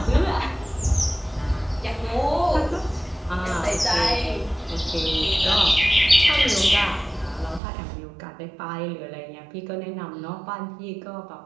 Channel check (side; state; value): left; drops out; at 7.6 s